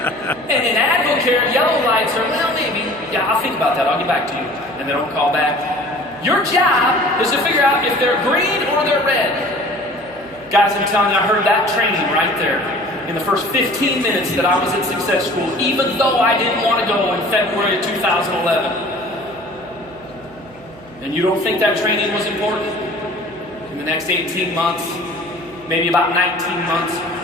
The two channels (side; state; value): right; noise; hum, 25 dB below the sound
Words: And in Advocare, yellow lights are, well, maybe. Yeah, I'll think about that. I'll get back to you. And they don't call back. Your job is to figure out if they're green or they're red. Guys, I'm telling you, I heard that training right there in the first 15 minutes that I was at Success School, even though I didn't want to go in February of 2011. And you don't think that training was important? In the next 18 months, maybe about 19 months,